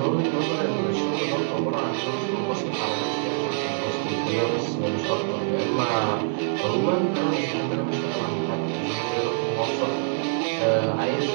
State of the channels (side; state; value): left; silent; digital silence